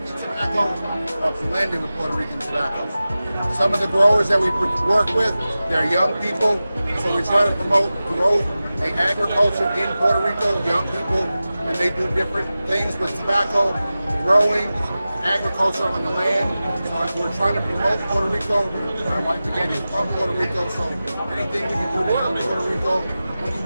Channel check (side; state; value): both; inverted; correlation -0.95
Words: tobacco or blended with Puerto Rican tobacco. Some of the growers that we work with, they're young people. So we try to promote growth and agriculture in Puerto Rico, young people, and they do different things with tobacco, growing, agriculture on the land. So we're trying to promote Puerto Rico. My wife again is from Puerto Rico, so anything we can do to help Puerto Rico, money